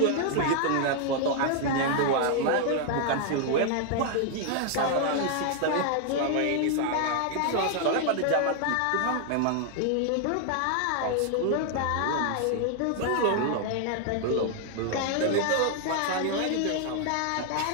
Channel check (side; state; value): both; different; correlation 0.00